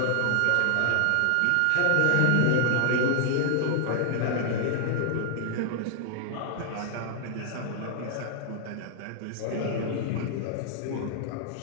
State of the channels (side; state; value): both; different; correlation 0.00